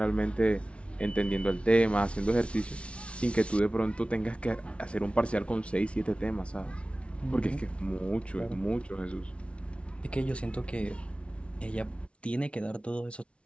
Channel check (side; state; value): right; late; 0.060 ms